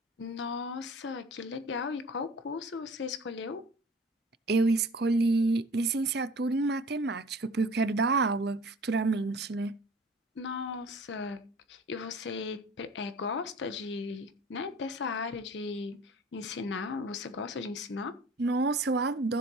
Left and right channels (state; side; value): normal; both; correlation 0.45